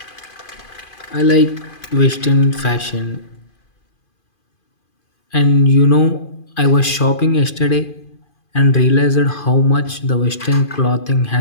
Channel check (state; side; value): late; right; 2.5 ms